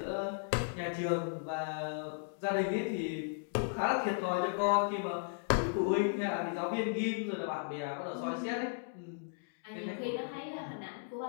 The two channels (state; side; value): silent; right; digital silence